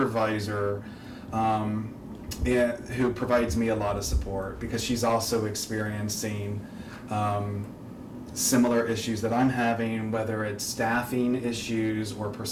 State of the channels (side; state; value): both; identical; correlation 1.00